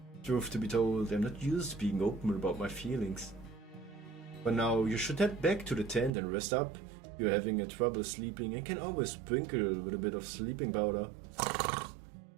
Truth to be told, I'm not used to being open about my feelings. But now you should head back to the tent and rest up. You're having trouble sleeping and can always sprinkle with a bit of sleeping powder.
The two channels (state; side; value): drops out; left; at 6.1 s